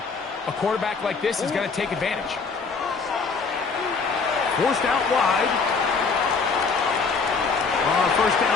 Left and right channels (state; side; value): quieter; right; 4.8 dB